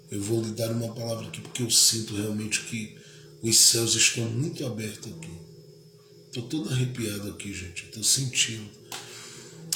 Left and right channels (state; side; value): identical; both; correlation 1.00